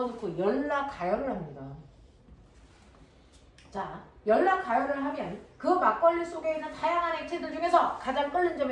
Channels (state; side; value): identical; both; correlation 1.00